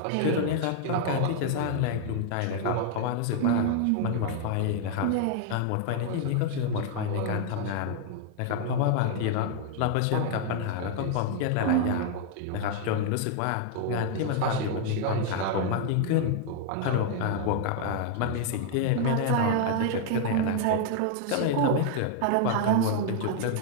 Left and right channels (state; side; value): different; both; correlation 0.00